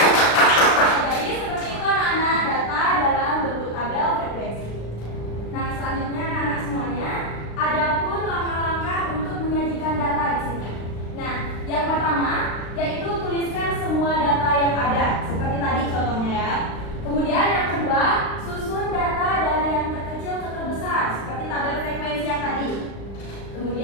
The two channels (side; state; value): right; late; 35 ms